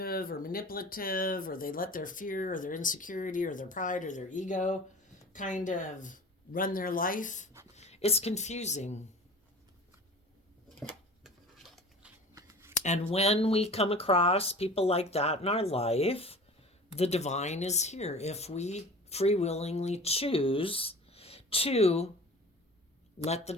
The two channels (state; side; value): normal; both; correlation 0.40